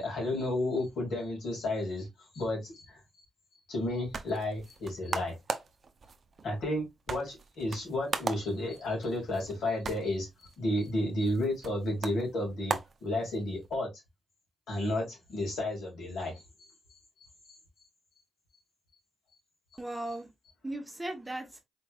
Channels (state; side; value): normal; both; correlation 0.77